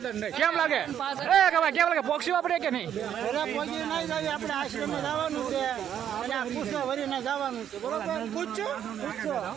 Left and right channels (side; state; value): left; quieter; 9.7 dB